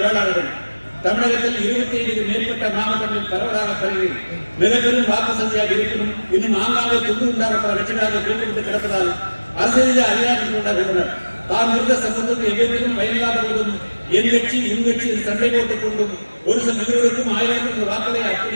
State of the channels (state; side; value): inverted; both; correlation -1.00